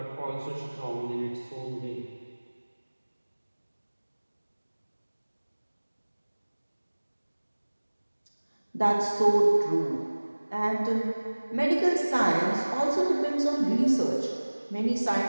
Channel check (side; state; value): both; inverted; correlation -1.00